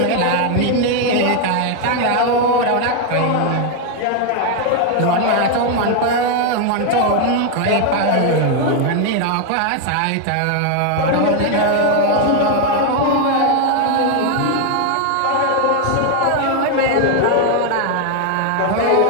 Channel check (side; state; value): both; different; correlation 0.01